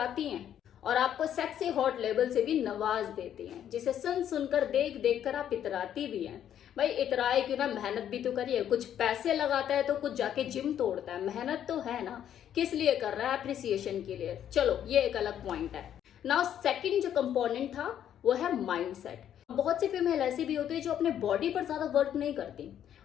हैं और आपको सेक्सी हॉट लेवल से भी नवाज देती हैं, जिसे सुन सुनकर देख देख कर आप इतराती भी हैं। भाई इतराए क्यों ना, मेहनत भी तो करिए। कुछ पैसे लगाता है तो कुछ जाके जिम तोड़ता है, मेहनत तो है ना, किस लिए कर रहा है? अप्रिसिएशन के लिए। चलो ये एक अलग पॉइंट है। नाउ सेकंड जो कंपोनेंट था वो है माइंडसेट। बहुत सी फीमेल ऐसी भी होती है जो अपने बॉडी पर ज्यादा वर्क नहीं करती,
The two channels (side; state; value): right; quieter; 10.1 dB